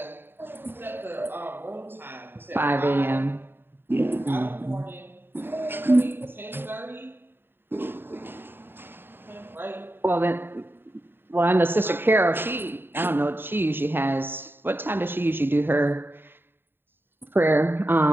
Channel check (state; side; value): late; left; 0.10 ms